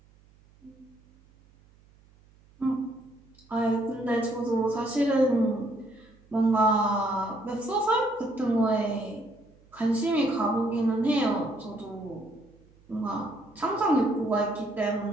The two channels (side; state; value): right; noise; hum, 29 dB below the sound